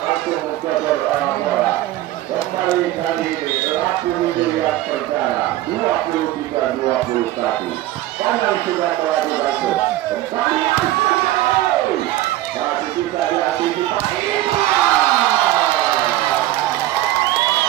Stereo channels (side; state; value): left; quieter; 15.2 dB